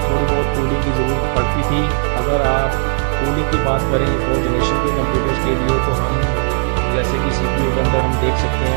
थोड़ी बहुत कूलिंग की ज़रूरत पड़ती थी। अगर आप कूलिंग की बात करें 4th जनरेशन के कंप्यूटर्स के लिए तो हम जैसे कि CPU के अंदर हम देख सकते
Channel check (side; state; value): left; silent; digital silence